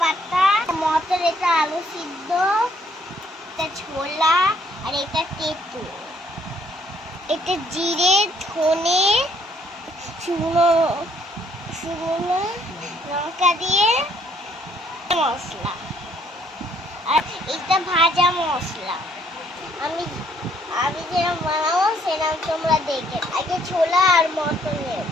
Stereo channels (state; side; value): normal; both; correlation 0.66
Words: পাতা, মটর, এটা আলু সিদ্ধ, এটা ছোলা, আর এটা তেঁতুল। এটা জিরে, ধনে, শুকনো লঙ্কা দিয়ে মশলা, আর এটা ভাজা মশলা। আমি যেরকম বানাবো সেরকম তোমরা দেখে। আগে ছোলা আর মটর নেব,